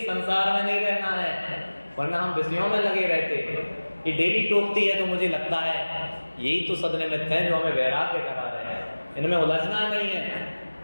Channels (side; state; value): both; inverted; correlation -1.00